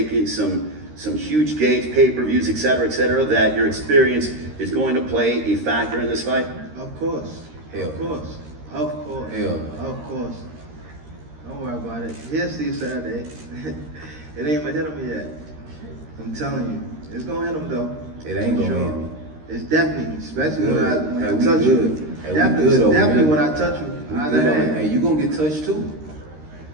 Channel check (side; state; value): left; late; 13 ms